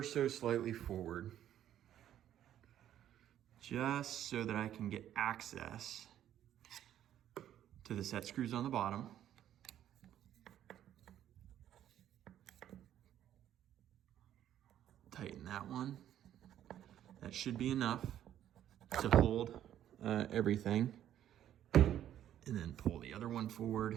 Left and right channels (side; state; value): left; quieter; 11.2 dB